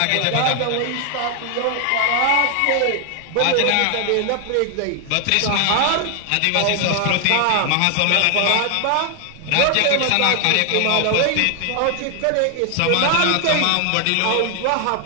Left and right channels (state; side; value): different; both; correlation 0.00